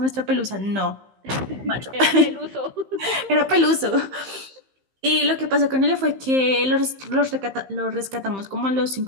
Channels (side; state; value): left; late; 15 ms